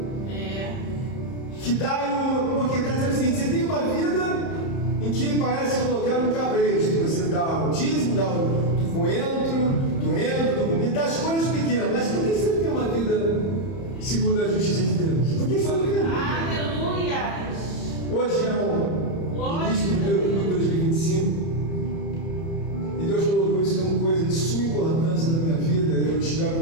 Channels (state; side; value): late; right; 30 ms